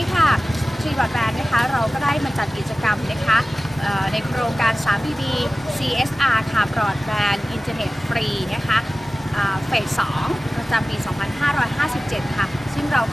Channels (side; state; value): both; normal; correlation 0.96